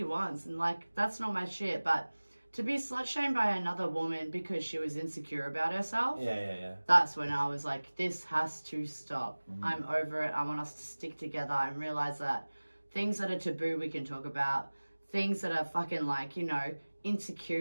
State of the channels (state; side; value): inverted; both; correlation -1.00